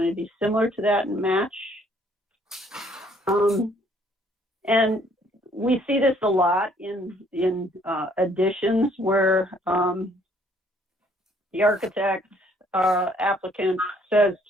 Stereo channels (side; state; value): both; normal; correlation 0.63